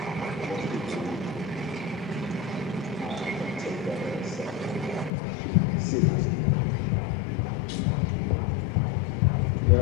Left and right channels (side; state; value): right; drops out; at 5.1 s